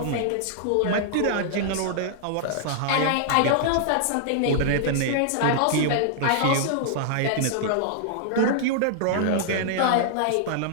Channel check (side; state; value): both; different; correlation -0.01